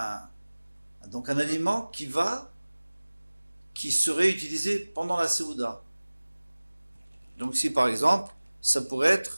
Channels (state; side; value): inverted; both; correlation -1.00